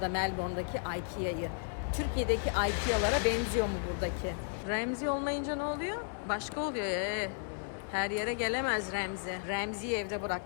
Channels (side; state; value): right; silent; 55 dB below the other